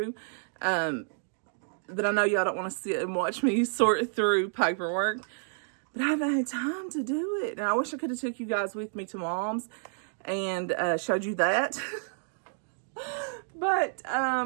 that I know y'all don't want to sit and watch me sort through paperwork, but I haven't had time to do it. And I wish I could have took you guys with me to Mom's and showed you that. But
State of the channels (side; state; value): left; silent; digital silence